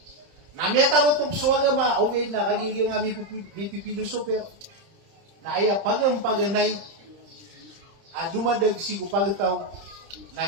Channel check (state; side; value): late; left; 30 ms